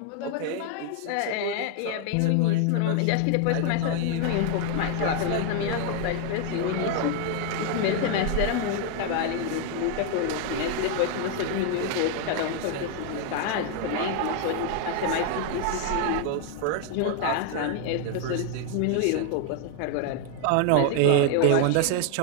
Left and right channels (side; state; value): both; different; correlation 0.00